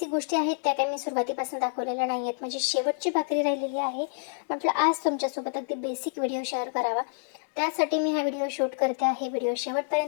गोष्टी आहेत, त्या काही मी सुरुवातीपासून दाखवलेल्या नाही आहेत. म्हणजे शेवटची भाकरी राहिलेली आहे. म्हटलं आज तुमच्यासोबत अगदी बेसिक व्हिडिओ शेअर करावा, त्यासाठी मी हा व्हिडिओ शूट करते आहे. व्हिडिओ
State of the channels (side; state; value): right; silent; digital silence